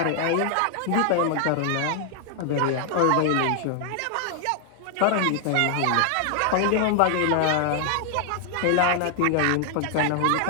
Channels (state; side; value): different; both; correlation 0.00